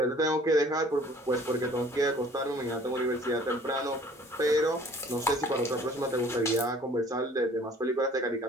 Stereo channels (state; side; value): normal; both; correlation 0.52